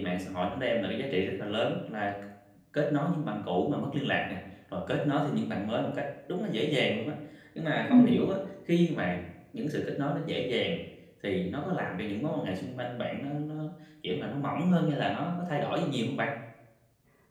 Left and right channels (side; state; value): both; identical; correlation 1.00